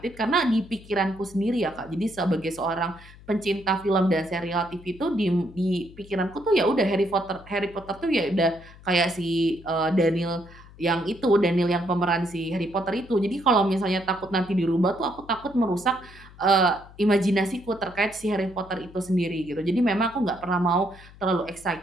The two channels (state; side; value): noise; left; hum, 21 dB below the sound